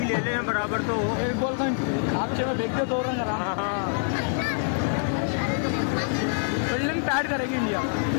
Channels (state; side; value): silent; right; 61 dB below the other